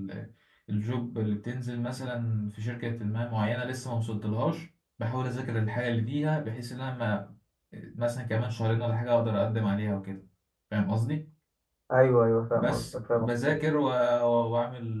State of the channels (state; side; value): identical; both; correlation 1.00